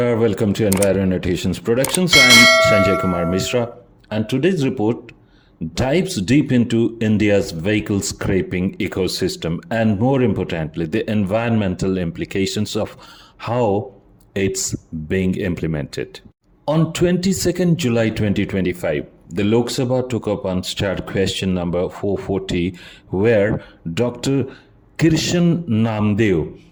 Welcome to Enviro Annotations Productions. I'm Sanjay Kumar Mishra, and today's report dives deep into India's vehicle scraping ecosystem and, more importantly, the environmental implications of how it's being implemented. On 22nd July 2025, the Lok Sabha took up Unstarred Question No. 440, where Dr. Kirshan Namdev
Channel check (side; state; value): both; identical; correlation 1.00